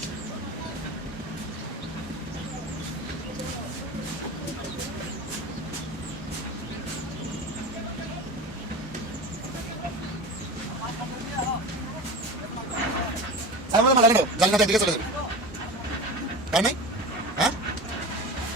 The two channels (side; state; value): both; normal; correlation 0.30